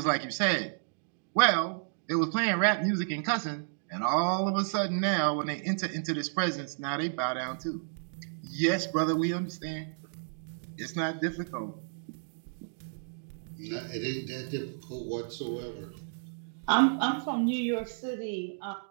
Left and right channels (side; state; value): left; silent; digital silence